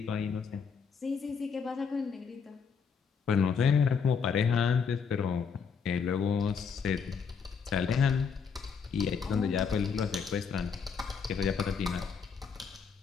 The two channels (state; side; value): quieter; right; 6.1 dB